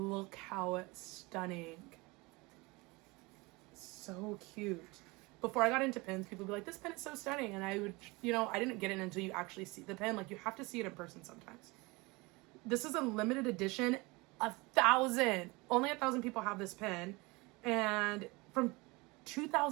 how stunning. So cute. Before I got into pins, people would be like, this pin is so stunning. And I would, I didn't get it until you actually see the pin. Like, you have to see it in person sometimes. This is a limited edition. 1,000. Only 1,000 people have this pin. And from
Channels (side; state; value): left; quieter; 24.7 dB